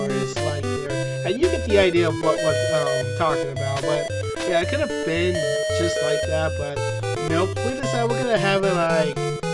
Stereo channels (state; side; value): identical; both; correlation 1.00